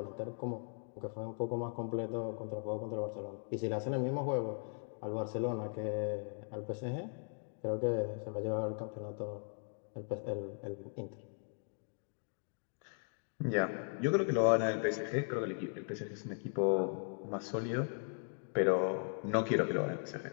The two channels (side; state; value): right; silent; 52 dB below the other